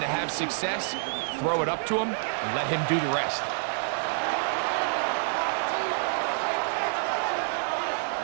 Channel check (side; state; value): left; silent; digital silence